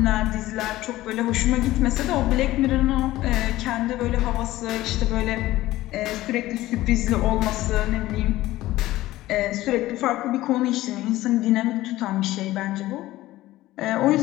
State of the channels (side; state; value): right; quieter; 16.4 dB